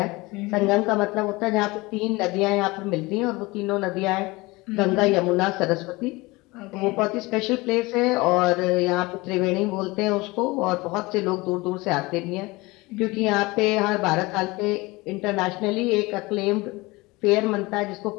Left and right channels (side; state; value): right; quieter; 22.7 dB